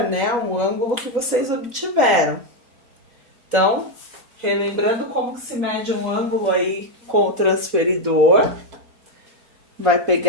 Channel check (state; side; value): late; left; 3.9 ms